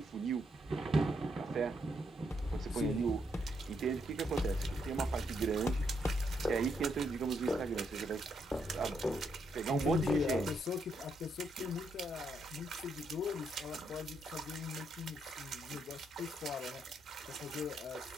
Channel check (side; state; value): both; normal; correlation 0.77